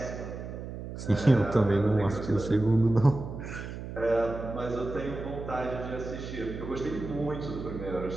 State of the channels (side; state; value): right; noise; hum, 9 dB below the sound